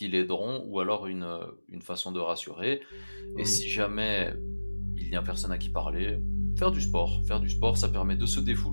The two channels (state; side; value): inverted; both; correlation -1.00